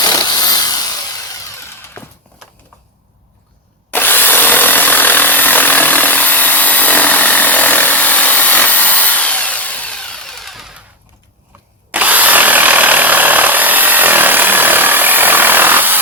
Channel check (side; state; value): both; normal; correlation 0.13